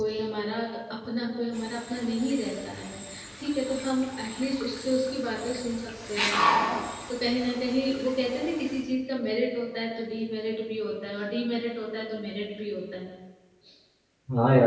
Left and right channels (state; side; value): identical; both; correlation 1.00